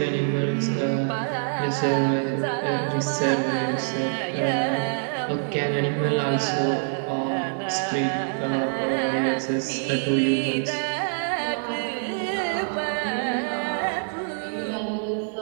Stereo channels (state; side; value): silent; left; 62 dB below the other